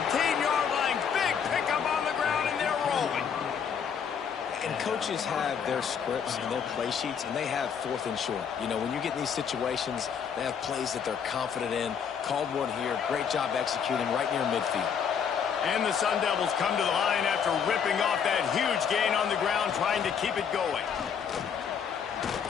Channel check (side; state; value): right; quieter; 7.2 dB